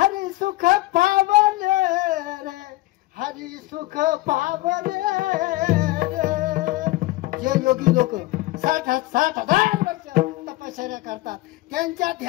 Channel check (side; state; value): right; quieter; 19.1 dB